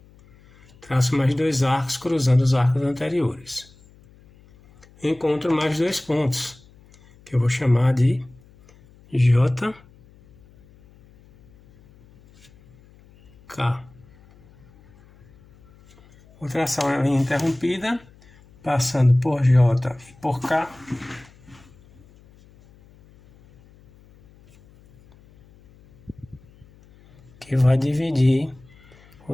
traço mais 2 arcos cruzando os arcos anteriores. Encontro mais 2 pontos, que eu vou chamar de J, K. Vou traçar uma linha interrompida, passando por J e por K. que vai dividir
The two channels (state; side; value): noise; left; hum, 27 dB below the sound